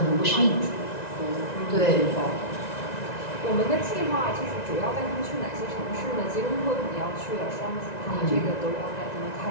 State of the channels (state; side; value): late; right; 1.9 ms